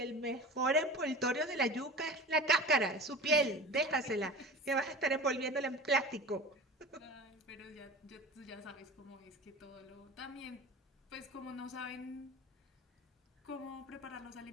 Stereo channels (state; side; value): normal; both; correlation 0.36